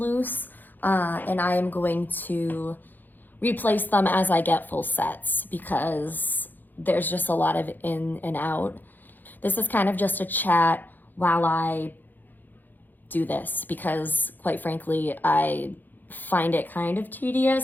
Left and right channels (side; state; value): right; late; 0.087 ms